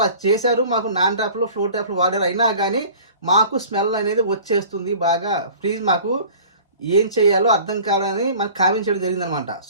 చేశారు. మాకు నాన్ ట్యాప్లు ఫ్లోర్ ట్యాప్లు వాడారు, అయినా కానీ మాకు స్మెల్ అనేది వచ్చేస్తుంది బాగా. ప్లీజ్ మాకు ఏం చేయాలో అర్థం కావాలని మనకు కామెంట్ చేయడం జరిగిందనమాట.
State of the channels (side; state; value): both; inverted; correlation -0.45